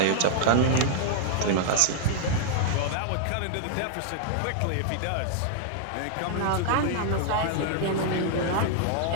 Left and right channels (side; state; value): both; different; correlation -0.01